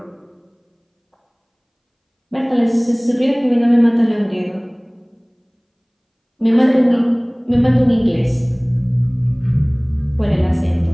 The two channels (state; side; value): identical; both; correlation 1.00